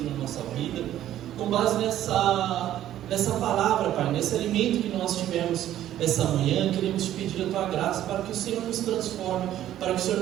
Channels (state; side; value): quieter; left; 12.4 dB